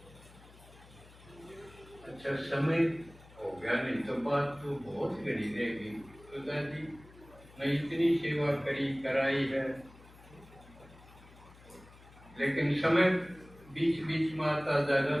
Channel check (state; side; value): noise; left; hum, 22 dB below the sound